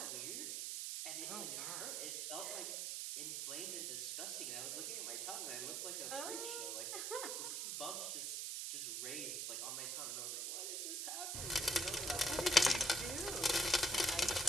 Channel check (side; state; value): right; noise; hiss, 1 dB below the sound